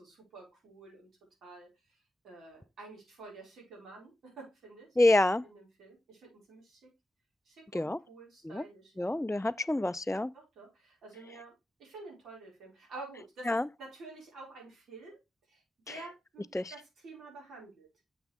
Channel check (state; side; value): normal; both; correlation 0.92